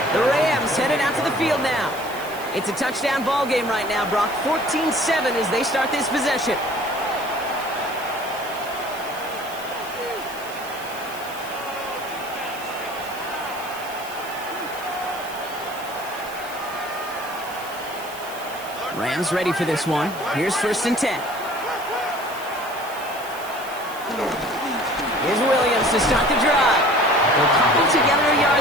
The Rams headed out to the field now. It's a touchdown ball game right now, Brock. 14-7 as they start this possession. Rams ready for this one. Here's 1st and 10. Here's Williams to start the drive. They'll cobble together a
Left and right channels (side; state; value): right; noise; hiss, 16 dB below the sound